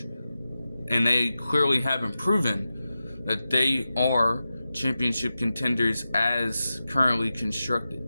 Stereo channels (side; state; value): both; inverted; correlation -0.92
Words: and they clearly haven't proven that they are championship contenders as currently constructed.